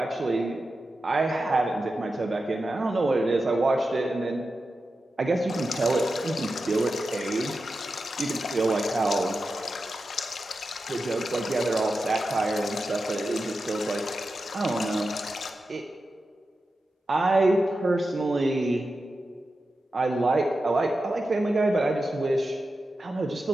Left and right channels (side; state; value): both; normal; correlation 0.91